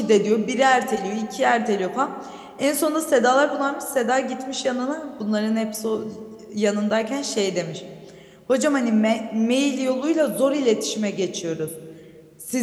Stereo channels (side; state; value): both; identical; correlation 1.00